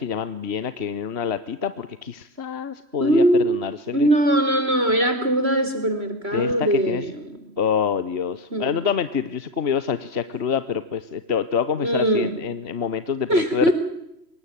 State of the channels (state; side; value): late; left; 3.0 ms